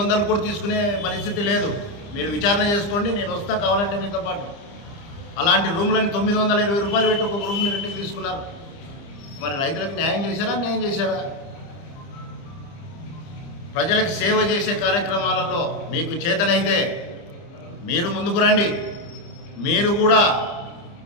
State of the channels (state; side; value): late; right; 30 ms